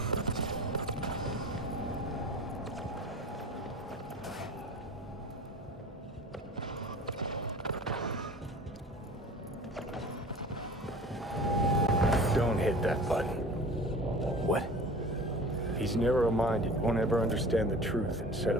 Don't hit that button. What? He's narrow-minded, won't ever understand the truth and set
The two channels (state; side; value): normal; both; correlation 0.40